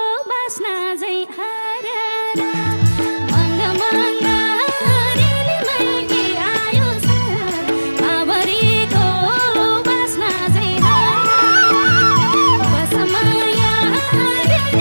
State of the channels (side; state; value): both; inverted; correlation -1.00